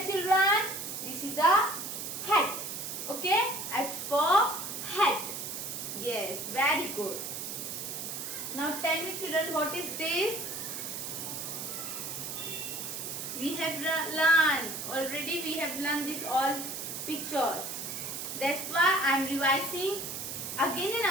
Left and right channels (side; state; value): right; noise; hiss, 6 dB below the sound